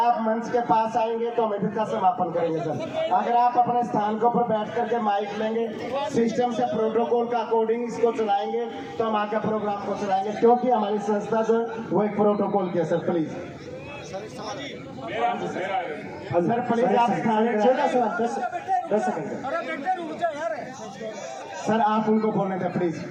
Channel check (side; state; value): both; identical; correlation 1.00